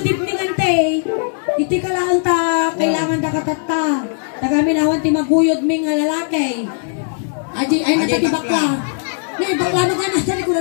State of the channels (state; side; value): silent; right; 67 dB below the other